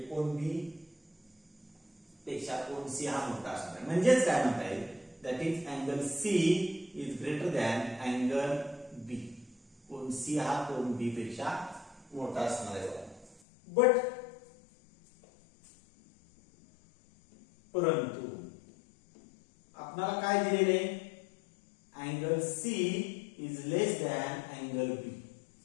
कोन बी पेक्षा कोन सी हा मोठा असणार आहे. म्हणजेच काय म्हणता येईल that is angle C is greater than angle B. कोन सी हा कोन बी पेक्षा मोठा असणार आहे. बट परंतु आपल्याला काय दिलेले? Angle C is less than angle B.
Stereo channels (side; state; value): right; drops out; at 13.4 s